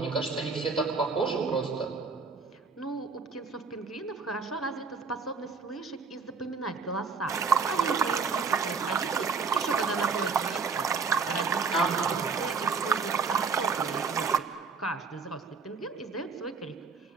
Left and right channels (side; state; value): left; quieter; 5.0 dB